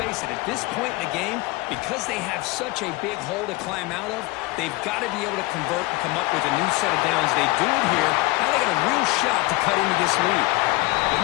it, at this point in the game, because they have such a big hole to climb out of, they've got to be able to convert and come up with a new set of downs. They do it here. Now they got a real shot to cut into this lead. They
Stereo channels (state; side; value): quieter; right; 22.0 dB